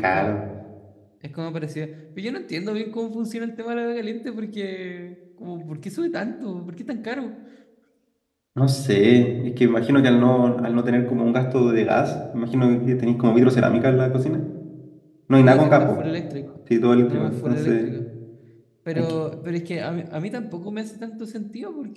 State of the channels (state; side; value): identical; both; correlation 1.00